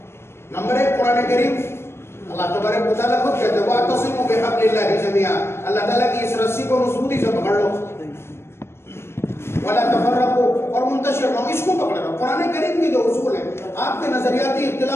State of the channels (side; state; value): right; late; 0.12 ms